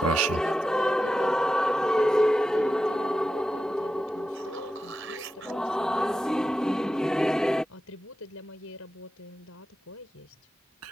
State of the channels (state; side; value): normal; both; correlation 0.91